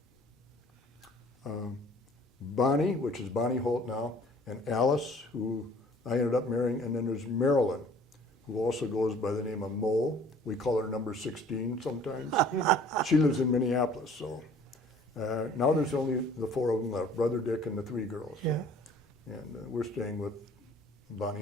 Bonnie, which is Bonnie Holt now, and Alice, who I ended up marrying, and then there's Marilyn, who also goes by the name of Mo. We call her number 16 sometimes. She lives in Minneapolis, so now there's only the 4 of them left, Brother Dick and the 3 girls. So. Yeah. And we're staying with Bonnie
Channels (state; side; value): normal; both; correlation 0.52